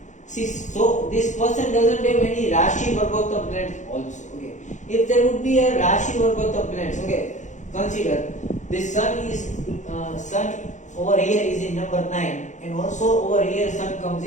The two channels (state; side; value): late; right; 0.35 ms